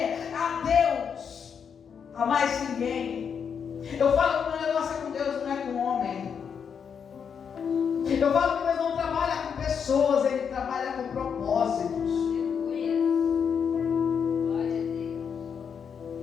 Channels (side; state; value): right; quieter; 7.0 dB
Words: a Deus, a mais ninguém. Eu falo que o meu negócio é com Deus, não é com o homem. Eu falo que Deus não trabalha com pessoas, Ele trabalha com propósitos.